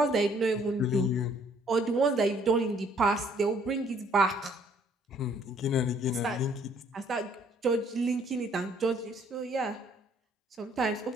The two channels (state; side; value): normal; both; correlation 0.62